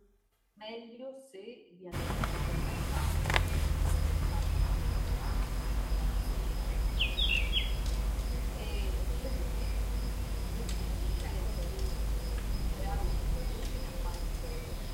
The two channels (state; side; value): identical; both; correlation 1.00